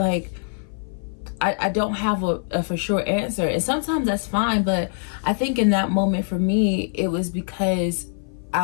I don't have a for sure answer. And sometimes that's fine, but I think in that moment for me, it was because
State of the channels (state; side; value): silent; right; 57 dB below the other